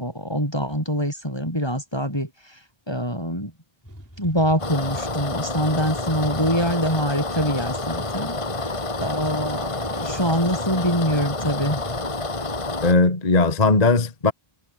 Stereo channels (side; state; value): right; late; 1.5 ms